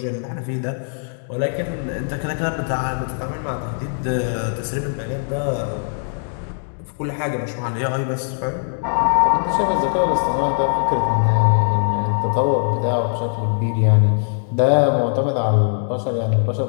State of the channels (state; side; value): silent; right; digital silence